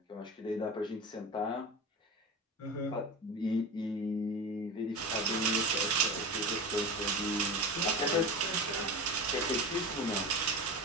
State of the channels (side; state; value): both; normal; correlation 0.27